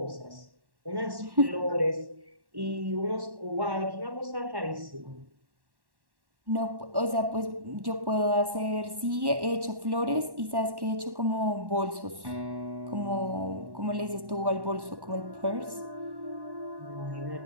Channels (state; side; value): late; left; 1.1 ms